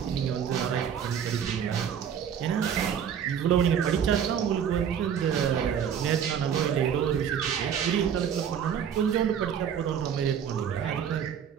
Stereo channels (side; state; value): left; quieter; 8.2 dB